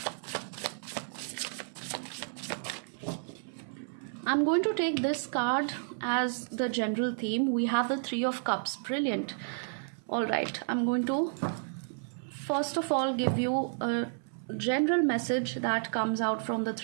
I'm going to take this card as the general theme. We have the Three of Cups. Brilliant. All right, I'm going to first of all give you a general message that comes out from the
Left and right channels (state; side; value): silent; left; 57 dB below the other